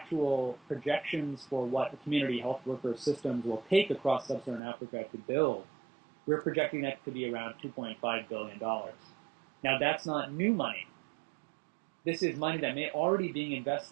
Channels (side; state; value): left; drops out; at 4.6 s